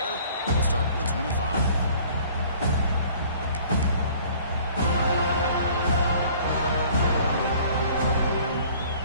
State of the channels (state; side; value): inverted; both; correlation -0.52